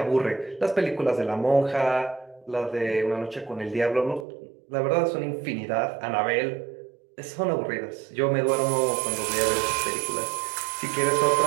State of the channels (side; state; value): left; drops out; at 4.2 s